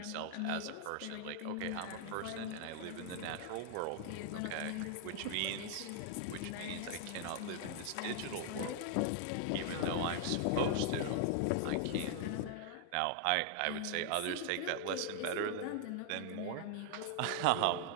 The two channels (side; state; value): both; different; correlation 0.00